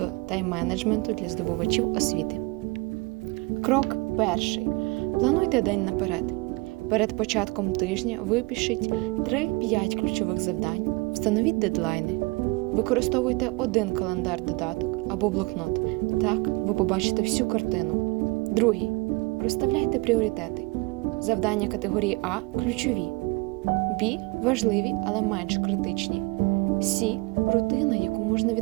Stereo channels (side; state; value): left; quieter; 24.9 dB